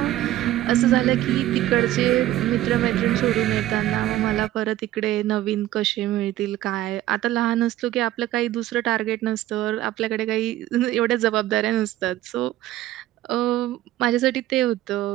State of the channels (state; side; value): quieter; left; 14.4 dB